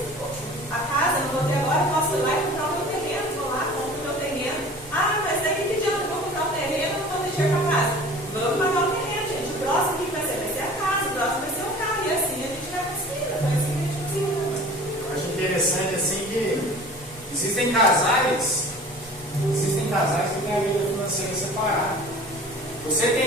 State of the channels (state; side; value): normal; both; correlation 0.43